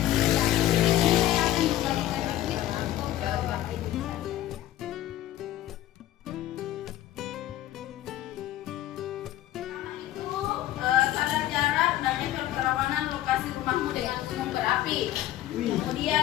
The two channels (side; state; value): right; quieter; 13.7 dB